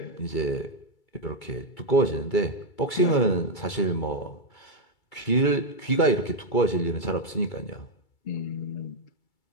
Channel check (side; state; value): right; late; 2.3 ms